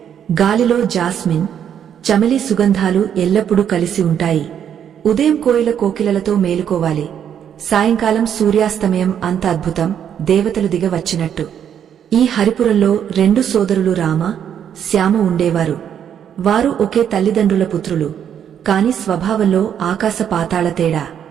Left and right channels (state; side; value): quieter; left; 9.0 dB